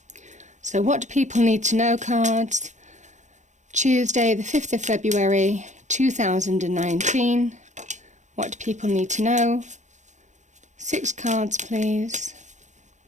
So what do people need to know cards? Tuesday the 5th of February 2019. What do people need to know? 6 cards please.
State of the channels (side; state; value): left; late; 0.35 ms